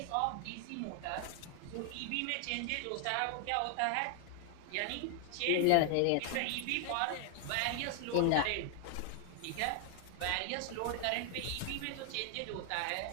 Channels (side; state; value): both; different; correlation 0.00